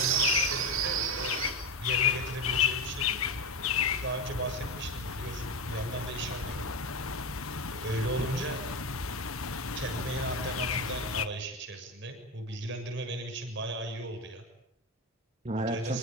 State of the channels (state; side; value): normal; both; correlation 0.16